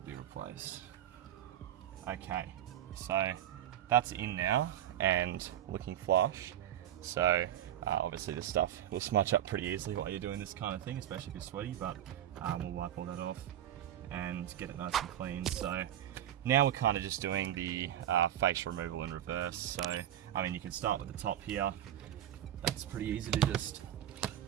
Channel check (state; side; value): quieter; left; 11.4 dB